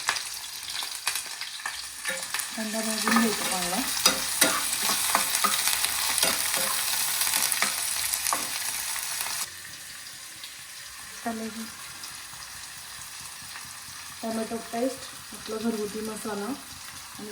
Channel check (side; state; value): both; identical; correlation 1.00